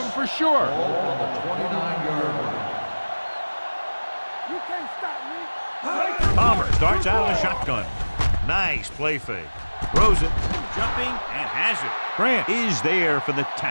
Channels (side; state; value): both; inverted; correlation -1.00